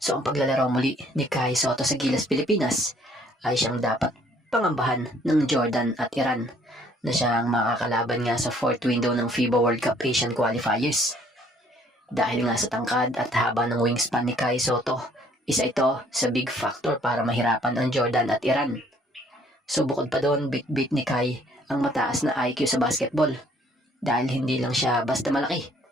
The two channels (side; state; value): both; normal; correlation 0.61